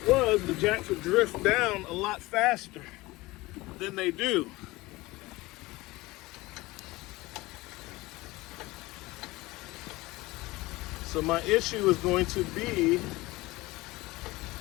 was, the jacks would drift down a lot faster than they do. So my issue is going to be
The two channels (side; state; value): right; quieter; 20.5 dB